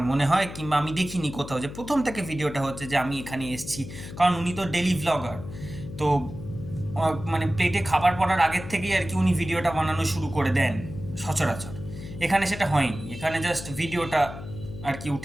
মনে হয়, কিংবা আমি দেখিনি কোথাও যে প্রথম থেকে ভিডিওটা হচ্ছে যে আমি এখানে এসেছি। কারণ উনি তো ডেলি ভ্লগার, তো মানে প্লেটে খাবার পড়ার আগের থেকেই আর কি উনি ভিডিওটা বানানো শুরু করে দেন সচরাচর। এখানে সেটা হয়নি, এখানে জাস্ট ভিডিওটা আর কি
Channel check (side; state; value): left; noise; hum, 11 dB below the sound